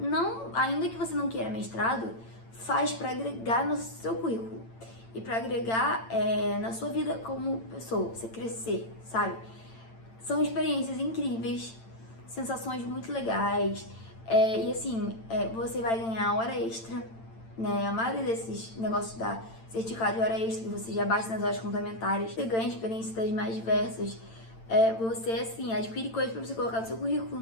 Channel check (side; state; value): right; late; 8.9 ms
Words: ainda que você não queira mestrado, faz para agregar no seu currículo. E para agregar na sua vida como pessoa, você crescer, sabe? São experiências incríveis, sensações muito legais. E assim, você vai ganhar hora extra, né? A maioria desses negócios da certificado de hora extra, que você já bate nas horas complementares, você ganha experiências das mais diversas. Você, assim, adquire coisas para você colocar no seu